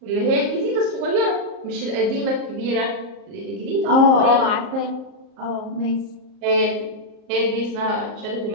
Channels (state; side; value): late; left; 38 ms